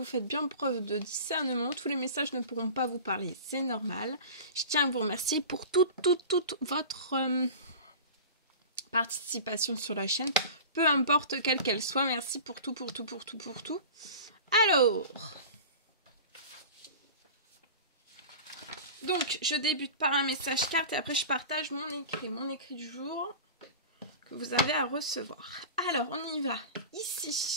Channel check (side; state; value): both; inverted; correlation -0.34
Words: faites bien preuve de discernement, tous les messages ne pourront pas vous parler, c'est normal. Je tiens à vous remercier pour toute votre participation sur la chaîne, peu importe quelle qu'elle soit, merci pour tout. Alors, donc je débute par un message carte et après je partage mon écrit du jour que vous avez à recevoir. Alors, on y va.